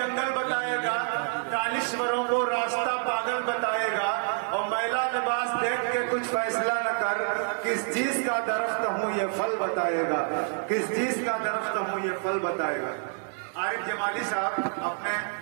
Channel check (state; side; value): silent; left; 60 dB below the other